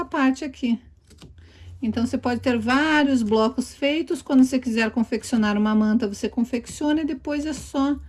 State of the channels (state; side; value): identical; both; correlation 1.00